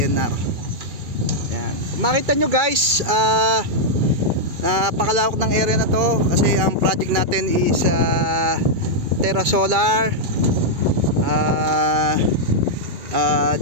Ayan, makita nyo guys, napakalawak ng area na to kasi ang project natin is Terra Solar,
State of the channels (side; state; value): left; late; 2.3 ms